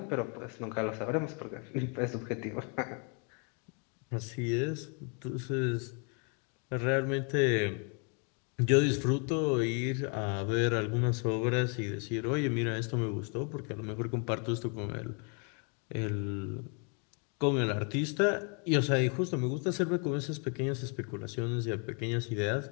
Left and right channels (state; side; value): quieter; right; 37.3 dB